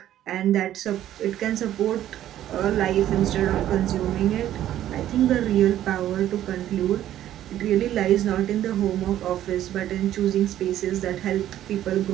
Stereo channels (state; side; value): quieter; left; 12.3 dB